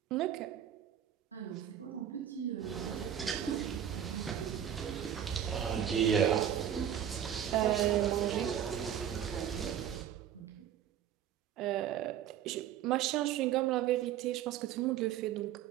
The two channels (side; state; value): left; quieter; 10.0 dB